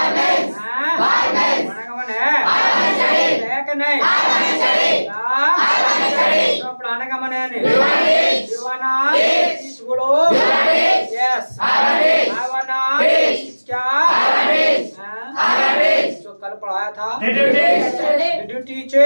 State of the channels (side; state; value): both; inverted; correlation -1.00